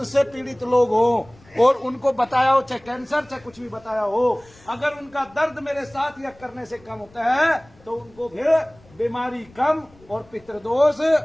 से पीड़ित लोग हो और उनको बताया हो, चाहे कैंसर चाहे कुछ भी बताया हो, अगर उनका दर्द मेरे साथ यज्ञ करने से कम होता है तो उनको फिर बीमारी कम और पितृदोष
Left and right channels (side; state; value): left; noise; rumble, 27 dB below the sound